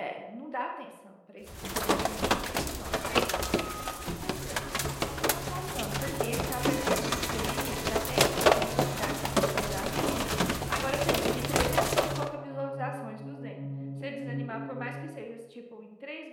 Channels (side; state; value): both; identical; correlation 1.00